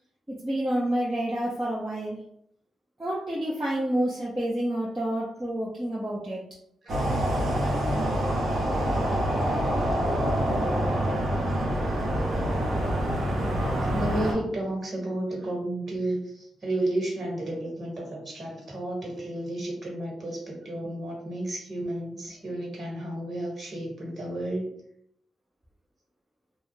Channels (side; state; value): both; normal; correlation 0.86